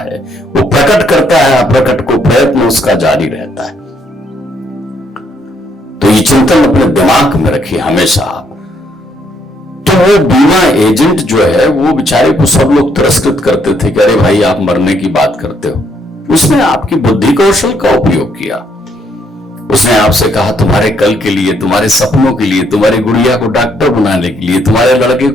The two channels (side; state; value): both; normal; correlation 0.71